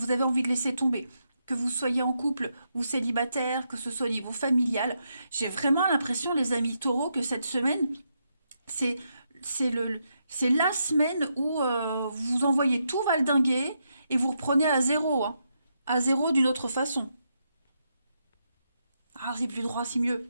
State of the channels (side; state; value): both; inverted; correlation -0.81